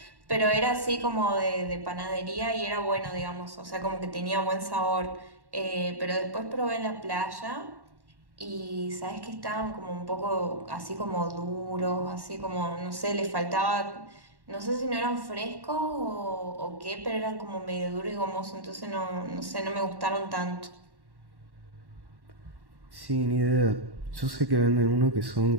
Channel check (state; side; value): late; left; 1.1 ms